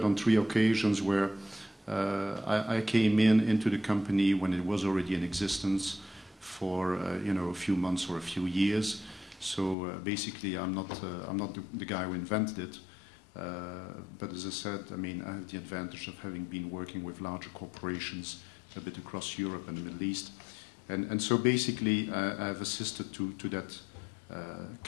on 3 occasions where I came into the company when it was already in existence for a few months or a few years. So basically, I'm not the guy who invented it. But as I said, I mean, I have the advantage of having been working with larger corporations a bit across Europe and the Middle East, and so basically, I've assisted to that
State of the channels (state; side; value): drops out; right; at 9.8 s